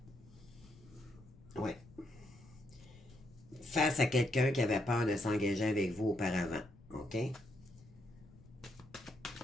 ouais. Face à quelqu'un qui avait peur de s'engager avec vous auparavant, OK?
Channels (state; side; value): noise; left; rumble, 23 dB below the sound